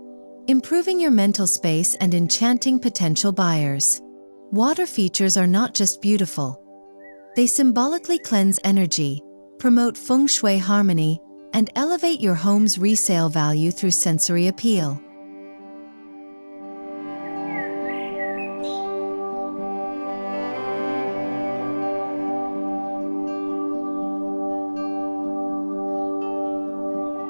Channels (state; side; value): inverted; both; correlation -1.00